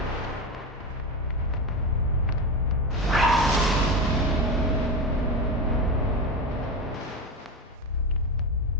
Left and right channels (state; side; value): normal; both; correlation 0.20